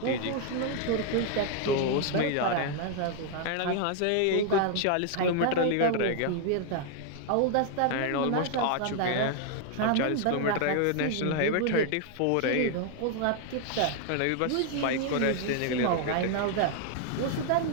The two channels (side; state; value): both; different; correlation 0.00